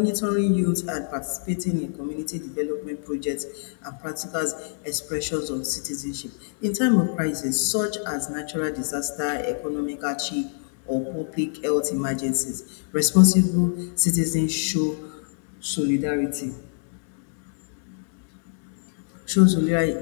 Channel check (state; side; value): silent; right; digital silence